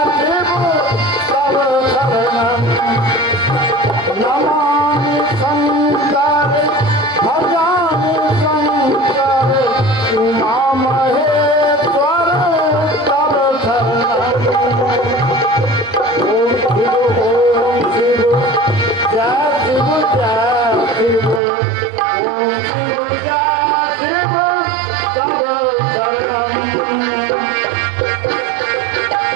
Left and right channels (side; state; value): left; drops out; at 21.4 s